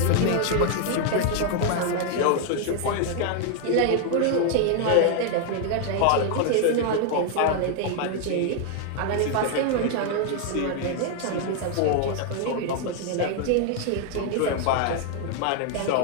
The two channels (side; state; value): both; different; correlation 0.00